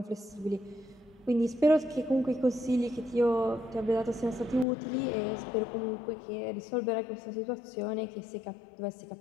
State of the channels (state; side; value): drops out; right; at 4.7 s